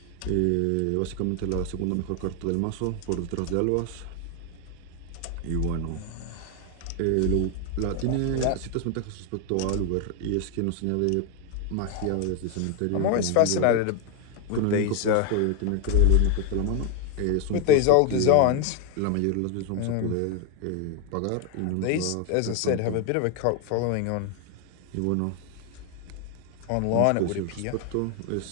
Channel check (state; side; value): different; both; correlation 0.01